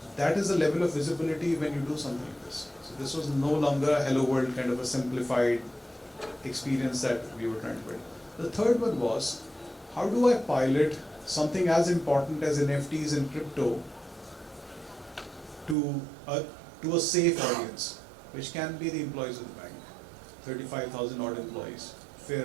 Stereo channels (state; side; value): drops out; left; at 15.8 s